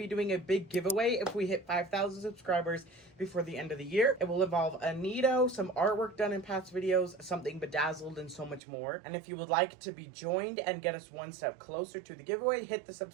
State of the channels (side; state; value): left; drops out; at 8.6 s